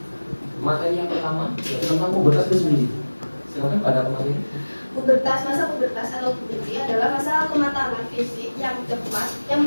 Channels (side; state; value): both; inverted; correlation -1.00